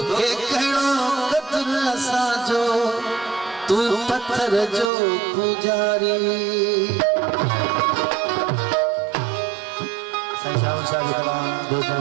साजो तू पत्थर जो पुजारी साईं शाह शाह की कलाम दोस्तों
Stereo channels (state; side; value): drops out; left; at 4.9 s